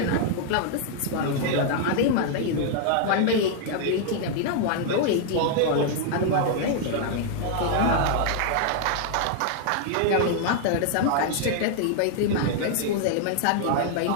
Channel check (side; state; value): both; different; correlation 0.00